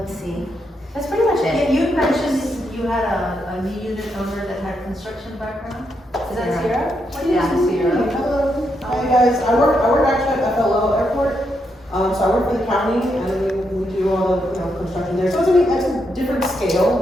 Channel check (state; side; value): normal; both; correlation 0.80